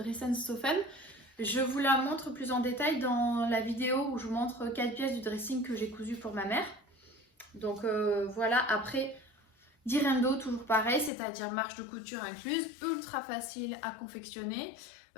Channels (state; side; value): drops out; right; at 11.1 s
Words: Je vous la montre plus en détail dans la vidéo où je vous montre 4 pièces du dressing que j'ai cousu pour ma mère. Donc voilà, après, Direndo, toujours pareil, c'est-à-dire marge de couture incluse, ultra facile à confectionner.